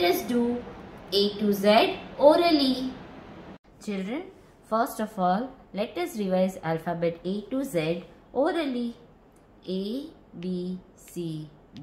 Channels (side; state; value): both; identical; correlation 1.00